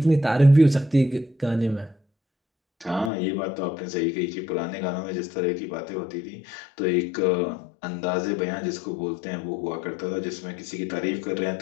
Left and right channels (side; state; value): right; drops out; at 3.1 s